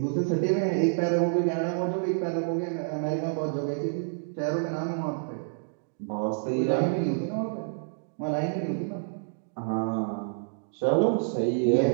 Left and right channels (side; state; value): left; silent; digital silence